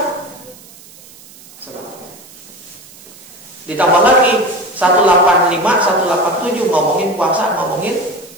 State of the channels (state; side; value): noise; right; hiss, 21 dB below the sound